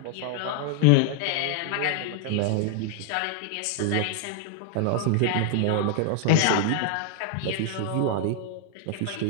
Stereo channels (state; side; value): different; both; correlation 0.00